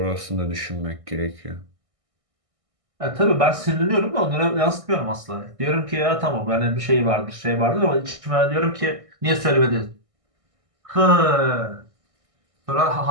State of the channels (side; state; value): left; late; 1.6 ms